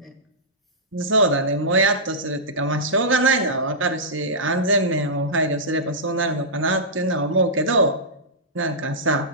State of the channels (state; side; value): normal; both; correlation -0.15